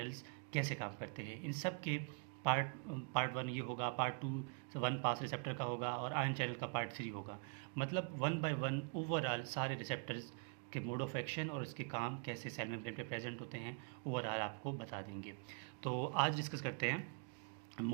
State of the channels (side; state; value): left; quieter; 37.7 dB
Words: कैसे काम करते हैं। इन सब के पार्ट पार्ट 1 ये होगा, पार्ट 2 1 पास रिसेप्टर का होगा, और आयन चैनल का पार्ट 3 होगा। मतलब 1 बाय 1 ओवरऑल सारे रिसेप्टर्स के मोड ऑफ एक्शन और उसके काम कैसे सेल मेम्ब्रेन पे प्रेजेंट होते हैं ओवरऑल आपको बता देंगे। तो आज डिस्कस करते हैं